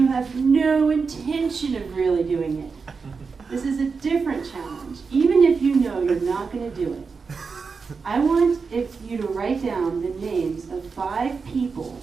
have no intention of really doing it. This is a different challenge. Even if you know you're not going to do it, I want you to write down the names of 5 people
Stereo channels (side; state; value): left; quieter; 5.0 dB